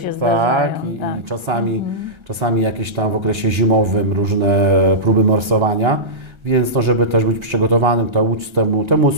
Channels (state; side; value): late; left; 1.3 ms